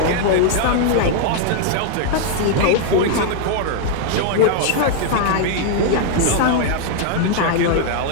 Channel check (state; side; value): different; both; correlation 0.00